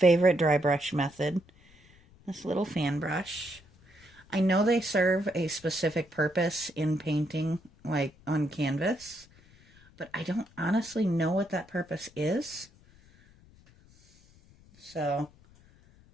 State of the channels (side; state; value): left; noise; rumble, 27 dB below the sound